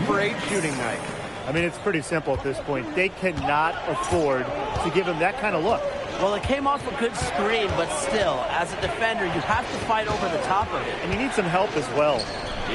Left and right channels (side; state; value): both; identical; correlation 1.00